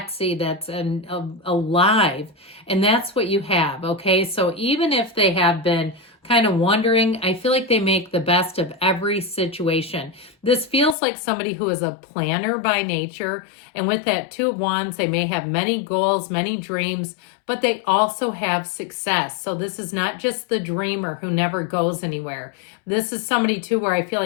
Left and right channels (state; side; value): drops out; right; at 11.0 s